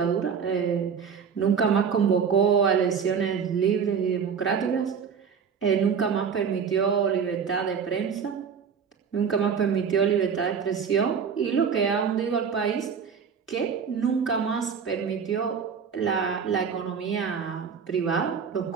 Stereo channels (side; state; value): left; quieter; 6.7 dB